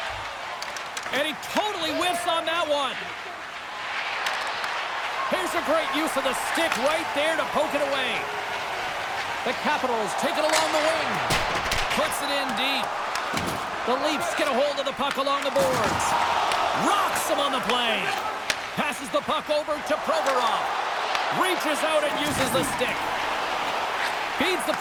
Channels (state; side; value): identical; both; correlation 1.00